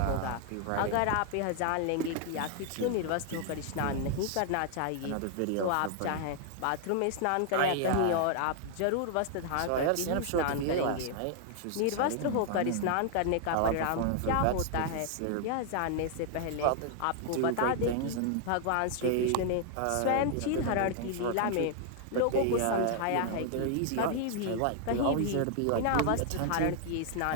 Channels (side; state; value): both; different; correlation 0.00